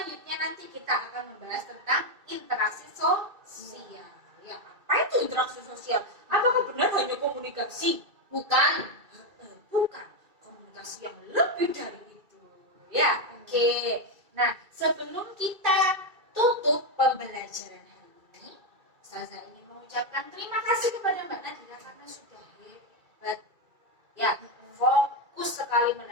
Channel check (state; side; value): late; left; 2.3 ms